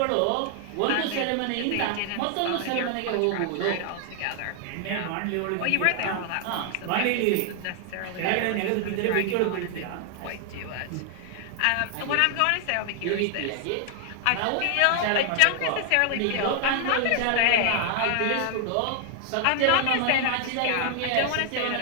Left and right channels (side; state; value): both; different; correlation 0.00